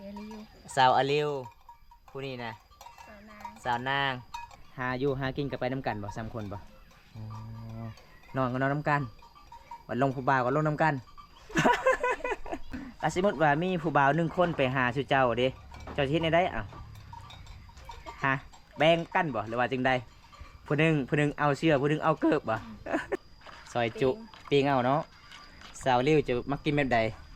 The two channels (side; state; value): both; identical; correlation 1.00